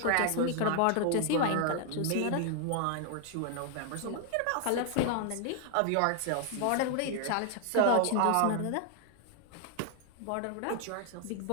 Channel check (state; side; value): different; both; correlation 0.00